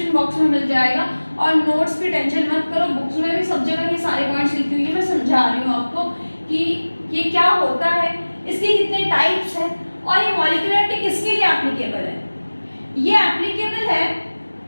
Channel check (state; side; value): inverted; both; correlation -1.00